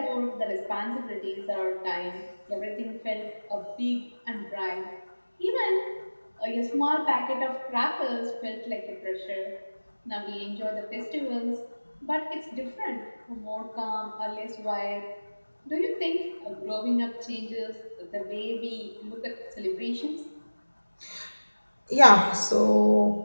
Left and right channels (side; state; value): both; inverted; correlation -1.00